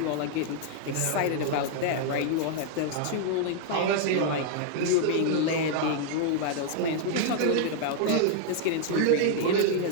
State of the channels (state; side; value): different; both; correlation -0.01